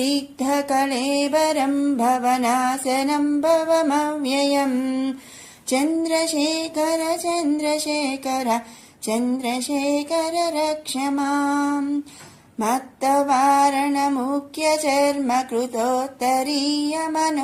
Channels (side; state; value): both; identical; correlation 1.00